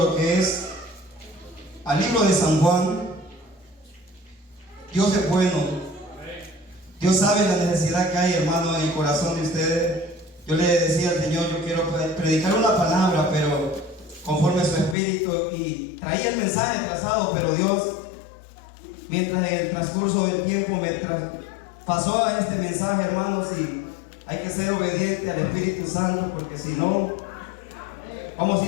que es al libro de San Juan. Dios es bueno. Dios sabe la necesidad que hay, hermano, en el corazón de ustedes. Yo le decía al Señor, yo quiero predicar una palabra, pero conforme a su espíritu, y traía el mensaje trazado, pero Dios, mientras en el transcurso del tiempo me pasó a este mensaje, hermanos, y hay que ser obediente al Espíritu Santo, porque si no, vamos a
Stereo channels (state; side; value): drops out; right; at 15.0 s